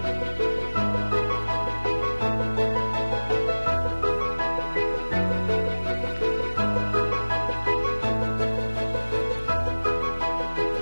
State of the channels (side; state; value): both; inverted; correlation -1.00